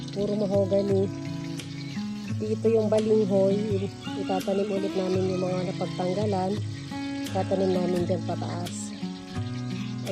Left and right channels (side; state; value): both; identical; correlation 1.00